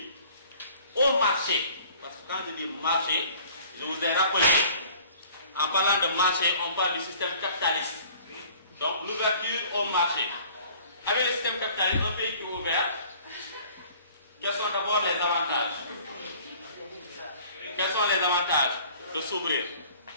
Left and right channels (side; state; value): both; inverted; correlation -0.51